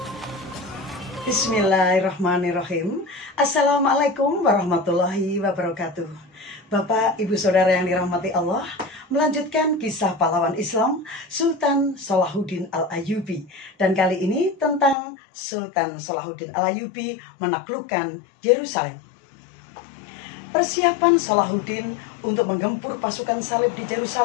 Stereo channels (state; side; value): drops out; right; at 15.0 s